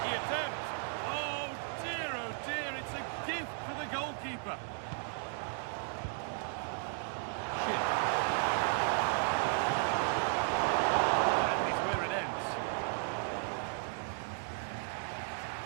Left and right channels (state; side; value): silent; left; 54 dB below the other